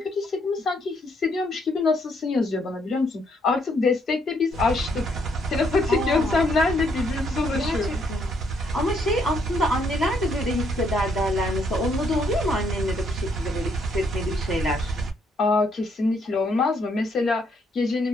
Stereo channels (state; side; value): normal; both; correlation 0.71